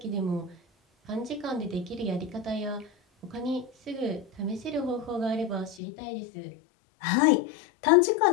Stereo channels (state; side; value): drops out; right; at 5.8 s